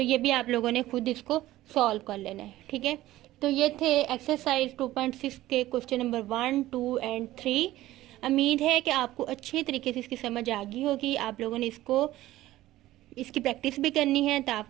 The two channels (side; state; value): left; quieter; 15.7 dB